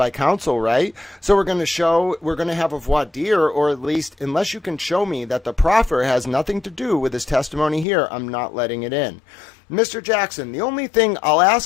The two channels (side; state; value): right; drops out; at 7.9 s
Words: counsel, right? So we're going to have a voir dire, or at least, unless you can show me that the proffer has nothing to do with his testimony here, I'm not letting it in. Mr. Jackson, the only thing I'll